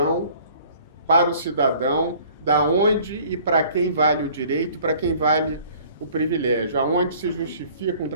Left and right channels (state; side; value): inverted; both; correlation -0.53